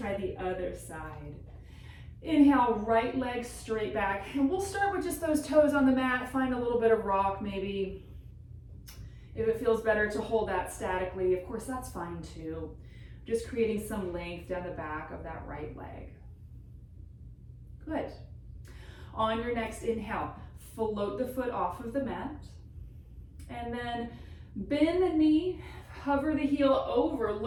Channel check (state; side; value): identical; both; correlation 1.00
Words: the other side. Inhale, right leg straight back. And we'll start with just those toes on the mat. Find a little bit of rock maybe. If it feels better to hold that statically, of course, that's fine too. Just creating some length down the back of that right leg. Good. On your next inhale, float the foot off of the mat. And then bend the knee, hover the heel over,